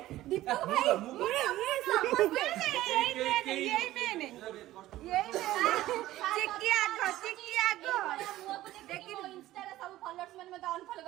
दीपक भाई ये सब यही मैंने चिकिया गो देखि इंस्टा रे सब फॉलोअर्स मन में तो अनफॉलो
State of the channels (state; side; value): quieter; left; 15.4 dB